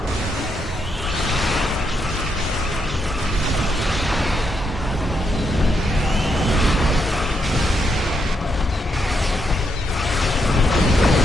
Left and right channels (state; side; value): normal; both; correlation 0.79